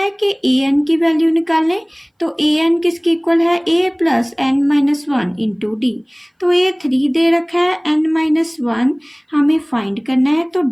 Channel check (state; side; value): identical; both; correlation 1.00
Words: कि AN की वैल्यू निकालें, तो AN किसके इक्वल है, A plus n minus 1 into D. तो A 3 दे रखा है, n माइनस 1 हमें फाइंड करना है, तो